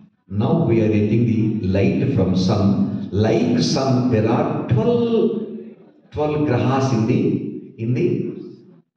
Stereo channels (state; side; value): identical; both; correlation 1.00